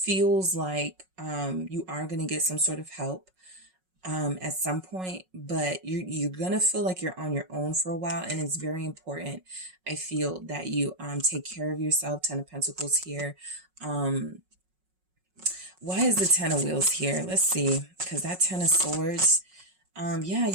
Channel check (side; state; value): left; late; 5.4 ms